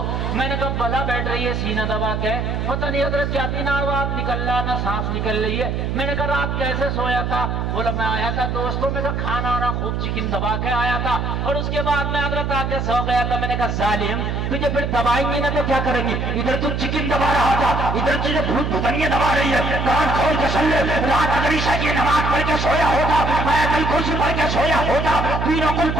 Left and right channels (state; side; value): noise; right; hum, 1 dB below the sound